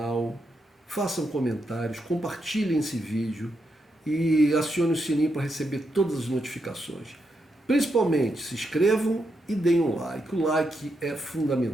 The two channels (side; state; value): both; normal; correlation 0.83